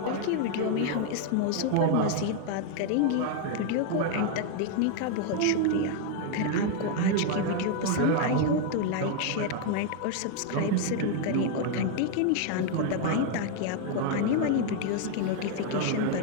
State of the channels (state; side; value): different; both; correlation 0.00